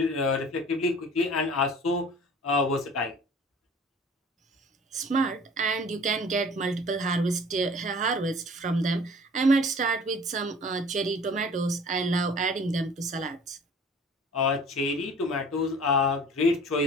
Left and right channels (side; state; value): both; normal; correlation 0.47